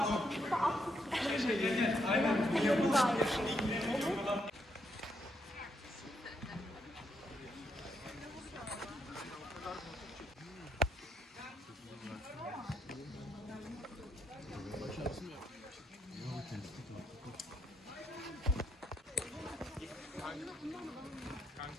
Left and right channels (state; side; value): normal; both; correlation 0.78